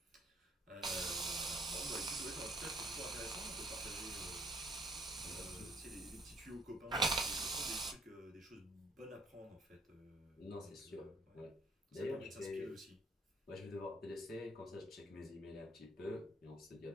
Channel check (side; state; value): both; normal; correlation 0.62